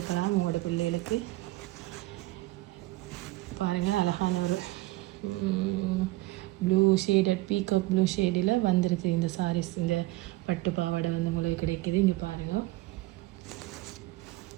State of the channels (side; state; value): left; quieter; 19.2 dB